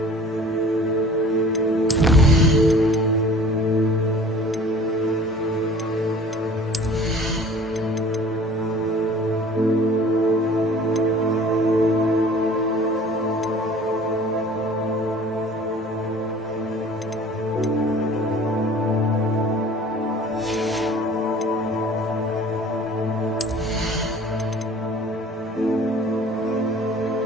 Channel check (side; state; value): both; normal; correlation 0.47